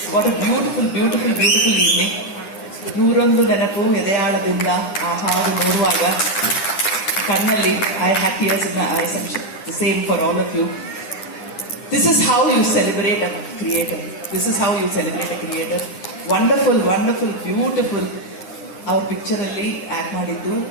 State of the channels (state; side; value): late; right; 9.8 ms